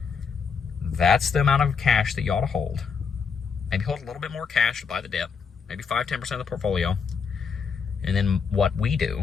That's the amount of cash that you ought to hold. Maybe hold a little bit more cash to buy the dip. maybe 5-10% of the portfolio. And then what we do,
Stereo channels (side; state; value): right; quieter; 5.9 dB